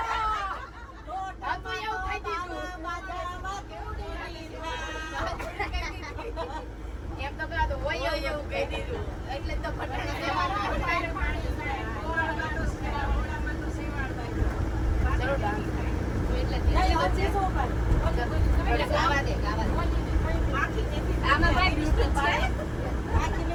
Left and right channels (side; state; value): both; identical; correlation 1.00